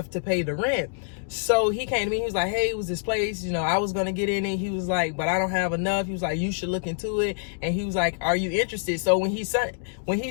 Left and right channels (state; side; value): silent; right; digital silence